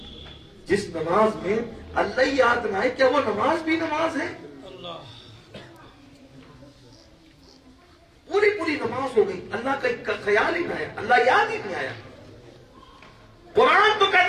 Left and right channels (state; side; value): identical; both; correlation 1.00